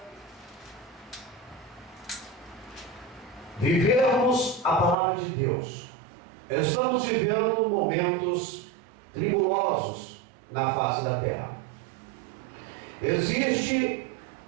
vivermos a palavra de Deus. Estamos vivendo momentos tribulosos na face da terra. Existem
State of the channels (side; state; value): left; drops out; at 5.0 s